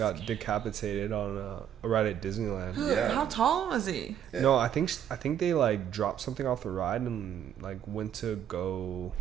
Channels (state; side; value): quieter; left; 9.8 dB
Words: decapitated on a ride at Disneyland. Yeah. How tall was he? Yeah. No, I think they like dropped something off the ride and like went to go